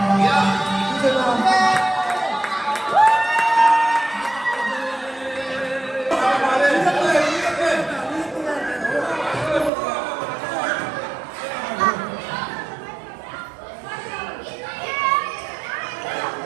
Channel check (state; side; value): drops out; left; at 9.7 s